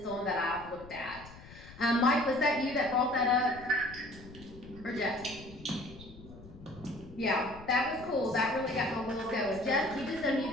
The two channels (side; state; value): left; noise; rumble, 18 dB below the sound